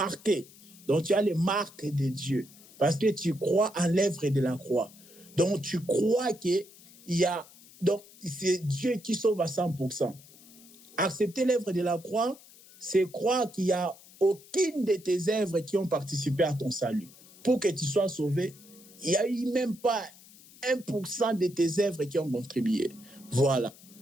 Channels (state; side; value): noise; left; hiss, 23 dB below the sound